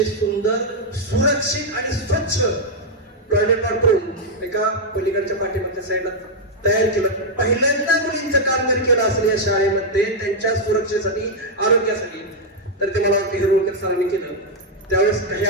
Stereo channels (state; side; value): normal; both; correlation -0.02